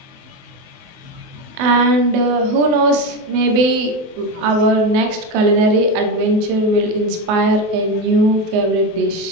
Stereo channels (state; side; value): late; left; 24 ms